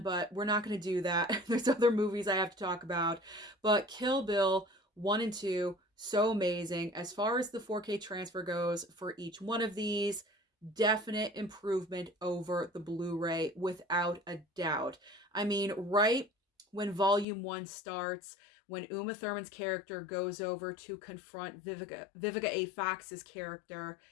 but we're not going to do that. There's other movies I have to talk about. But Kill Bill 1 and 2, so amazing. As far as the 4K transfer goes for each one of these, definite improvement over the Blu-ray without a doubt. I mean, right when Volume 1 starts, when Uma Thurman's character goes over to confront Vivica A. Fox's character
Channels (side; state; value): right; drops out; at 17.2 s